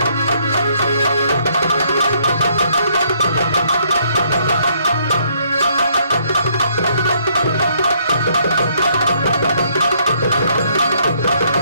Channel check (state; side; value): inverted; both; correlation -0.68